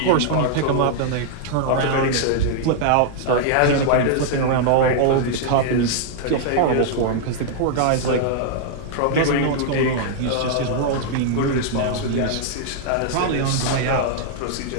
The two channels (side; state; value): both; different; correlation -0.01